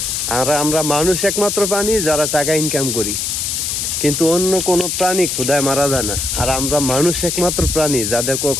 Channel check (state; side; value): noise; left; hiss, 1 dB below the sound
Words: আর আমরা মানুষ একমাত্র প্রাণী যারা টাকা ইনকাম করি, কিন্তু অন্য কোনো প্রাণী ক্ষুধায় মারা যায় না। আর আমরা মানুষ একমাত্র প্রাণী যাদের